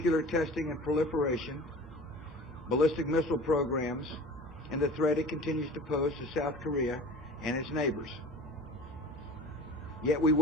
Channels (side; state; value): both; normal; correlation 0.40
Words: testing and proliferation, ballistic missile programs, and the threat it continues to pose to South Korea and its neighbors. Yet we